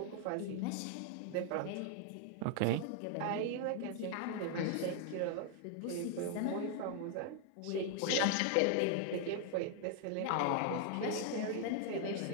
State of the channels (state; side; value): different; both; correlation 0.00